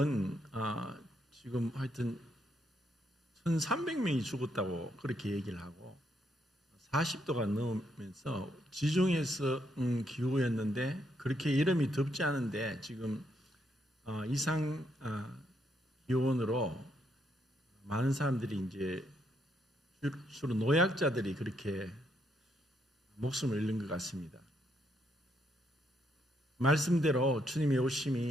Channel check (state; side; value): normal; both; correlation 0.76